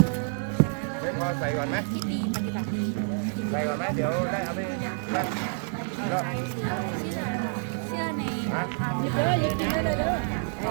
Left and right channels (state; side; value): silent; left; 59 dB below the other